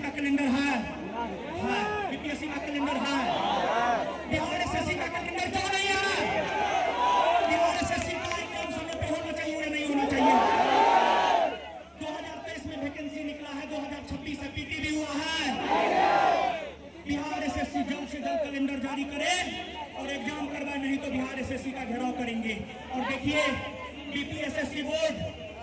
कैलेंडर है, बीपीएससी का कैलेंडर है, बिहार एसएससी का कैलेंडर क्यों नहीं है? बिहार एसएससी का एग्जाम समय पे होना चाहिए या नहीं होना चाहिए? 2023 में वैकेंसी निकला है, 2026 से पीटी भी हुआ है। बिहार एसएससी जल्द से जल्द कैलेंडर जारी करे और एग्जाम करवाए, नहीं तो बिहार एसएससी का घेराव करेंगे। और देखिए बीपीएसएससी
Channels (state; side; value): identical; both; correlation 1.00